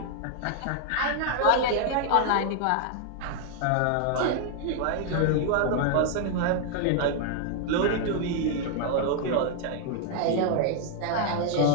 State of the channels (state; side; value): different; both; correlation 0.00